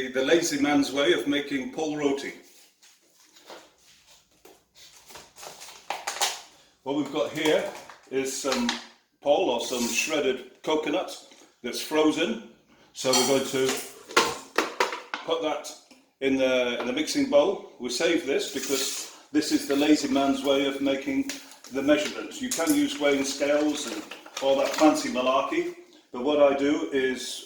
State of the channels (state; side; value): identical; both; correlation 1.00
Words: lazy man's way of making pol roti. What we've got here is some pol, or some shredded coconut that's frozen. So we're going to put that in the mixing bowl. We save this because this is the lazy man's way of making the measurements. You can use weighing scales and all that fancy malarkey, but what I do